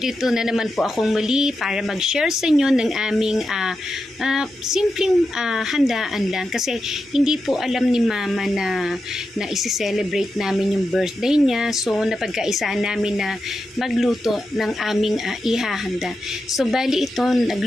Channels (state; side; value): normal; both; correlation 0.88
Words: na naman po akong muli para mag-share sa inyo ng aming simpleng handaan lang kasi hindi po alam ni Mama na isi-celebrate namin yung birthday niya, so napagkaisaan namin na magluto ng aming ihahanda. So bali ito,